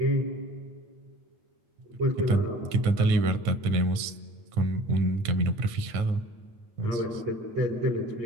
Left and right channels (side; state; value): left; late; 9.4 ms